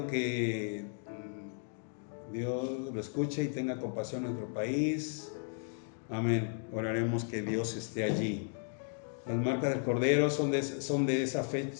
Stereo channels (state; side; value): silent; right; 55 dB below the other